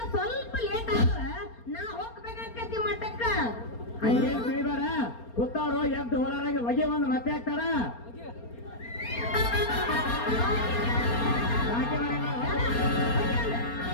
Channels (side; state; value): right; late; 4.3 ms